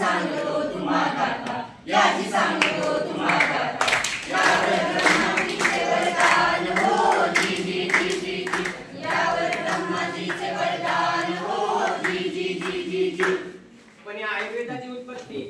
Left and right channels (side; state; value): both; identical; correlation 1.00